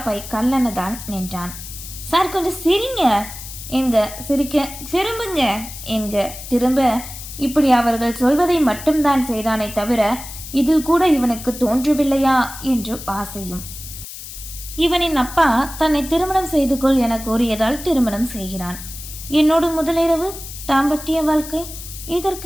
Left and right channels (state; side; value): noise; left; hiss, 12 dB below the sound